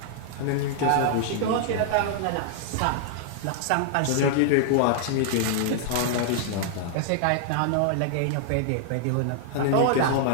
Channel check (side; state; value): both; different; correlation -0.01